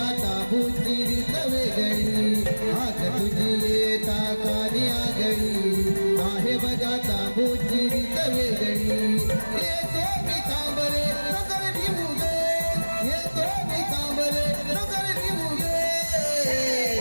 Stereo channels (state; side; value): inverted; both; correlation -1.00